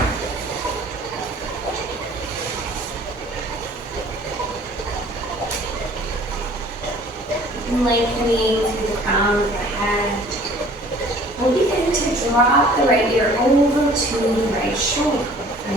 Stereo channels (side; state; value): both; normal; correlation 0.51